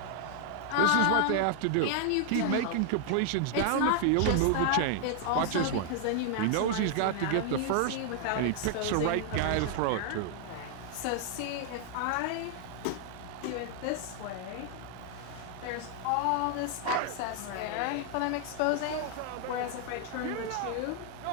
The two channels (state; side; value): different; both; correlation 0.00